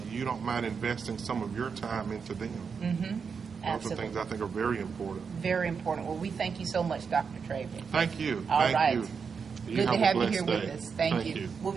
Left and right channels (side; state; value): left; quieter; 5.9 dB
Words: you don't mind investing some of your time into them. Those are things I think are very important. Very important. Well, we thank you so much, Dr. Dravic. Thank you. All Thank right. you. Good to have you here with us. Thank you. We'll